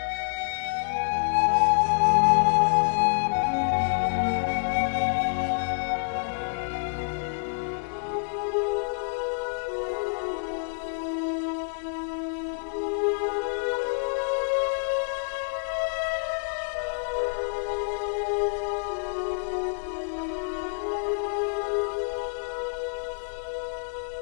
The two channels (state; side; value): silent; right; digital silence